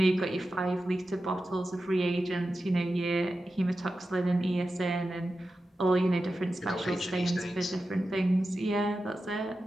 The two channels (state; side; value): normal; both; correlation 0.92